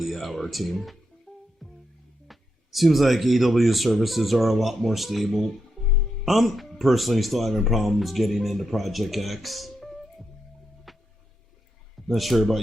hour, team. Seems like AW services are a lot more stable. I'm personally still having problems getting into Project X. Not sure about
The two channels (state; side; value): normal; both; correlation 0.84